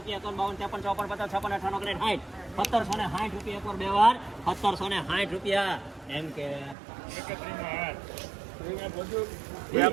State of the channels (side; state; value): left; drops out; at 6.8 s